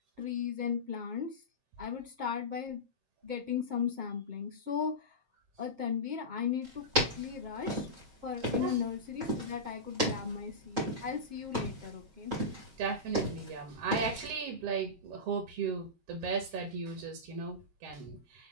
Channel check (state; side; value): late; left; 7.5 ms